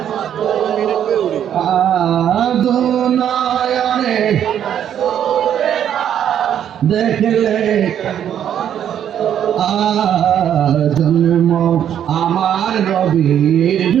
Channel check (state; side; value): quieter; left; 9.7 dB